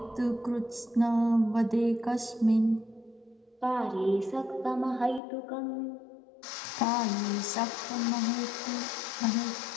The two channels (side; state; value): right; drops out; at 5.2 s